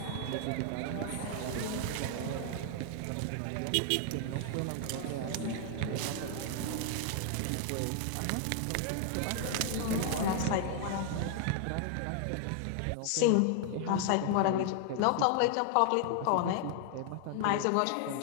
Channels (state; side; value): different; both; correlation 0.00